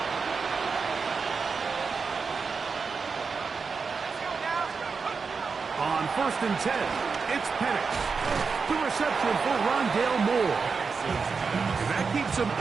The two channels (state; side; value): quieter; left; 5.1 dB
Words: On 1st and 10, it's Penix. The reception for Rondale Moore. And that keeps him